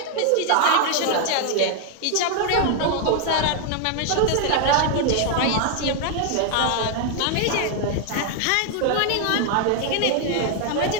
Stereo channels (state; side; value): different; both; correlation 0.00